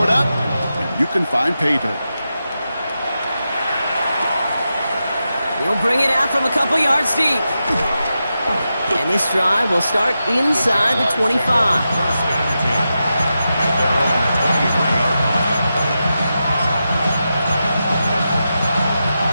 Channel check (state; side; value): inverted; both; correlation -0.89